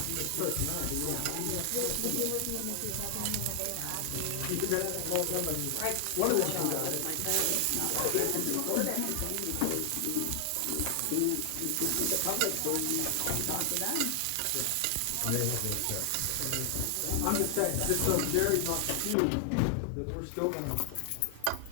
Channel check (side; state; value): both; different; correlation 0.00